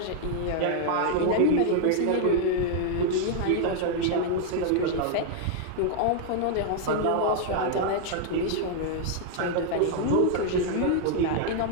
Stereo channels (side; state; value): both; different; correlation 0.00